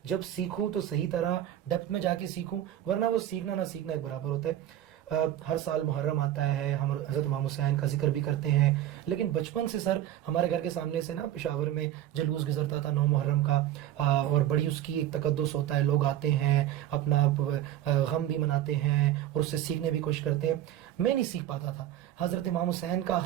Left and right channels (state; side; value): quieter; left; 12.2 dB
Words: جب سیکھوں تو صحیح طرح ڈیپتھ میں جا کے سیکھوں, ورنہ وہ سیکھنا نہ سیکھنا ایک برابر ہوتا ہے. ہر سال محرم آتا ہے, ہم حضرت امام حسین کا ذکر بھی کرتے ہیں, لیکن بچپن سے سر ہمارے گھر کے سامنے سے نا پشاور میں جلوس گزرتا تھا 9 محرم کا, اور بڑی اس کی ایک تقدس ہوتا ہے, لوگ آتے ہیں اپنا غم بھی مناتے ہیں اور اس سے سیکھنے بھی کوشش کرتے ہیں. میں نہیں سیکھ پاتا تھا حضرت امام حسین کا